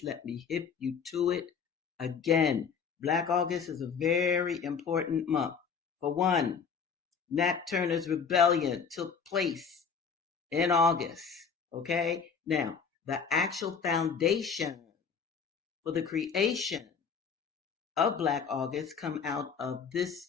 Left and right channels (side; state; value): right; quieter; 6.1 dB